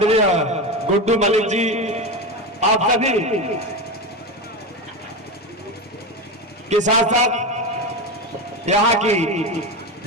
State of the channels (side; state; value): both; normal; correlation 0.19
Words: गुड्डू मलिक जी, आप सभी के साथ साथ यहाँ की